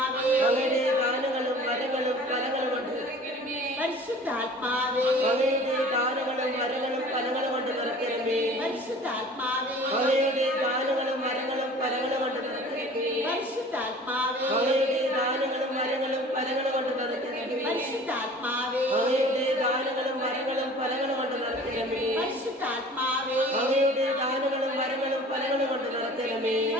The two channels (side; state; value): both; normal; correlation 0.45